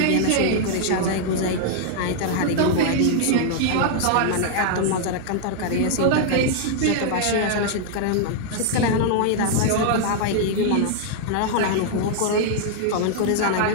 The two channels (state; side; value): different; both; correlation -0.01